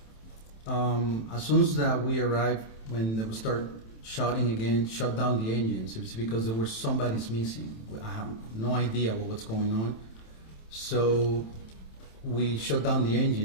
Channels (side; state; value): right; late; 27 ms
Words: As soon as that we arrived, when they would start shouting again, shut down the engines, it's because there was somebody's missing. I have no idea what's going on. So we shut down the